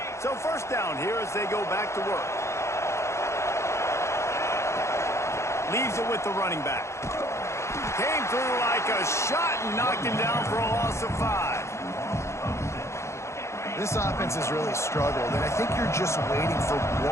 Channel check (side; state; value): right; late; 0.14 ms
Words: So first down here as they go back to work. Leaves it with the running back. Came through like a shot and knocked him down for a loss of 5. This offense has really struggled, and I think you're just waiting for